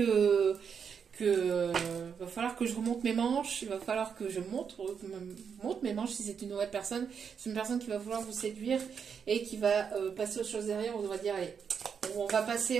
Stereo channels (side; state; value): left; quieter; 6.8 dB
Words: je remonte mes manches, il va falloir que je monte mes manches si c'est une nouvelle personne. C'est une personne qui va vouloir vous séduire et qui va passer aux choses derrière. On va dire, allez, on